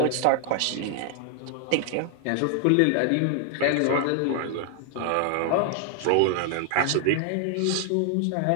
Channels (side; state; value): both; different; correlation 0.00